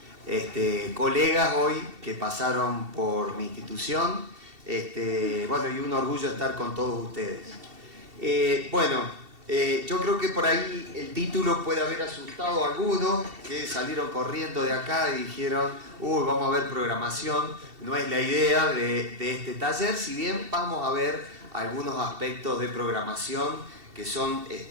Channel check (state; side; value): late; left; 2.7 ms